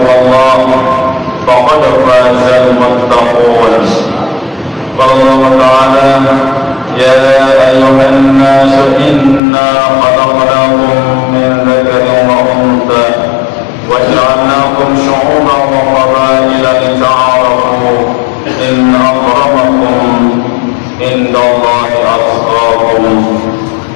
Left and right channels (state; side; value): drops out; right; at 9.4 s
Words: faqad fazal muttaqun. Allah Ta'ala ya ayyuhan nasu inna khalaqnakum min dzakarin wa untha wa ja'alnakum syu'uban wa qabaila lita'arafu inna akramakum indallahi atqakum